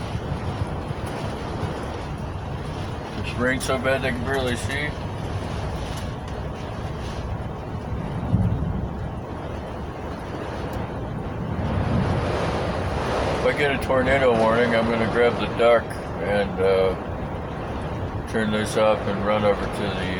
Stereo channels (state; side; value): identical; both; correlation 1.00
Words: It's rained so bad they can barely see. If I get a tornado warning, I'm going to grab the duck and turn this up and run over to